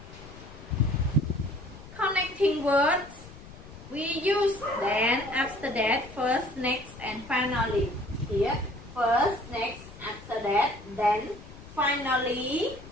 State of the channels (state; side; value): noise; left; rumble, 17 dB below the sound